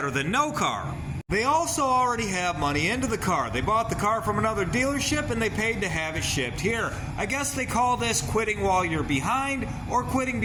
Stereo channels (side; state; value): both; identical; correlation 1.00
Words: than no car. They also already have money into the car. They bought the car from another dealership and they paid to have it shipped here. I guess they call this quitting while you're behind or quitting